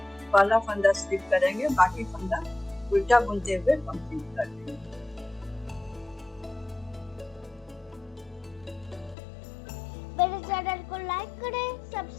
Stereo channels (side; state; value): right; drops out; at 9.2 s